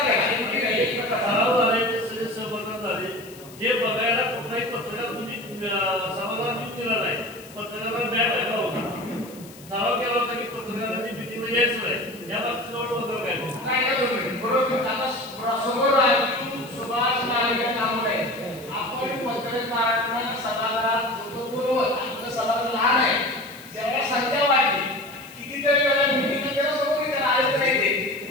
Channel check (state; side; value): noise; left; hiss, 21 dB below the sound